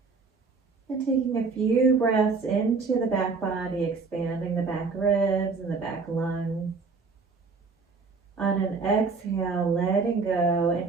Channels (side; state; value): left; quieter; 4.5 dB